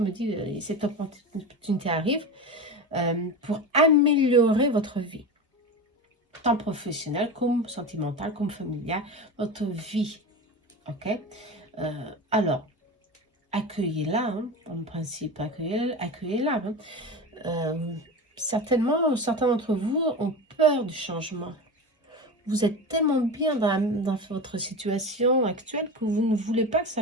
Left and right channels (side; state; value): both; normal; correlation 0.25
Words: dit, cette opportunité arrive pour améliorer votre vie, tant professionnelle comme sentimentale, comme familiale, votre vie, ok? Alors, accueillez-la, hein, en principe, accueillez-la. Hein. Certainement, certains d'entre vous ont peur du changement. Vous êtes tellement bien dans votre situation actuelle que vous ne voulez pas que ça